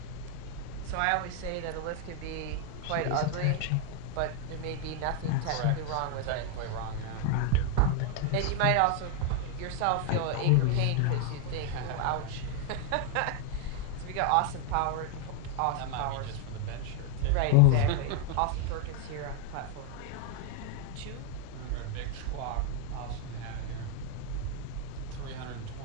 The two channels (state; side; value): different; both; correlation 0.01